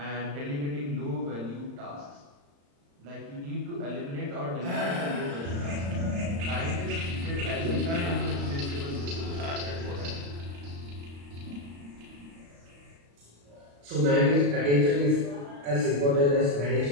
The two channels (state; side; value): late; left; 35 ms